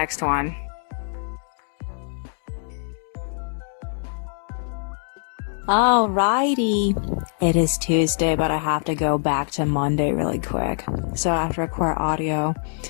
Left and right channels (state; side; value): silent; right; digital silence